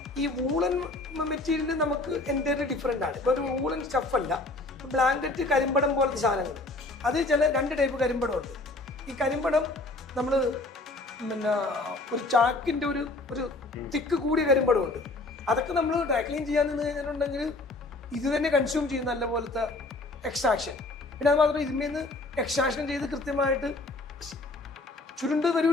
ഈ വൂളൻ മെറ്റീരിയൽ നമുക്ക് എൻ്റയർലി ഡിഫറെൻ്റ് ആണ്. ഇപ്പൊ ഒരു വൂളൻ സ്റ്റഫ് അല്ല, ബ്ലാങ്കറ്റ് കരിമ്പടം പോലത്തെ സാധനങ്ങൾ, അത് ചില 2 ടൈപ്പ് കരിമ്പടം ഉണ്ട്. ഈ കരിമ്പടം നമ്മൾ പിന്നെ ഒരു ചാക്കിന്റെ ഒരു തിക്ക് കൂടിയ കരിമ്പടം ഉണ്ട്. അതൊക്കെ നമ്മൾ ഡ്രൈ ക്ലീൻ ചെയ്യാൻ നിന്ന് കഴിഞ്ഞിട്ടുണ്ടെങ്കിൽ ഇത് തന്നെ കൺസ്യൂം ചെയ്യും നല്ല പോലത്തെ എക്സ്ട്രാക്ഷൻ. പിന്നെ അത് മാത്രം ഇതിന്മേന്ന് എക്സ്ട്രാക്ഷൻ ചെയ്ത് കൃത്യമായിട്ട് ചുരുണ്ട്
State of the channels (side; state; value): right; quieter; 3.0 dB